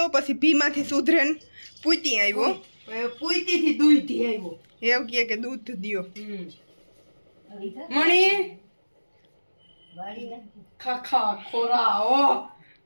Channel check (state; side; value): inverted; both; correlation -1.00